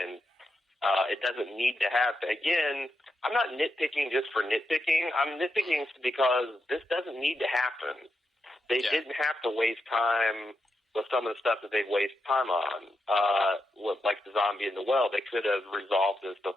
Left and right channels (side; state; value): both; normal; correlation 0.85